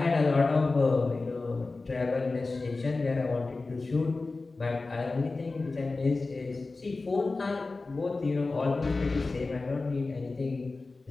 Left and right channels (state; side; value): quieter; right; 3.6 dB